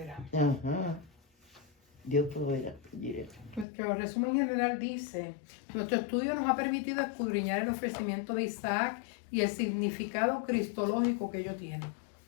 Ajá. Dios proveerá. Jireh. Nuestro resumen general dice: nuestro estudio nos ha permitido escudriñar el ofrecimiento de Isaac y el significado cristológico que ello tiene.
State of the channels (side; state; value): right; drops out; at 3.7 s